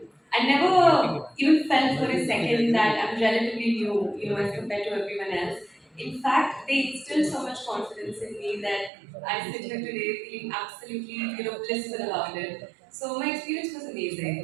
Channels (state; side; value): drops out; left; at 8.9 s